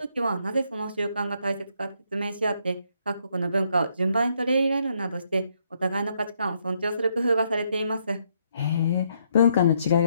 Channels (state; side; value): inverted; both; correlation -0.73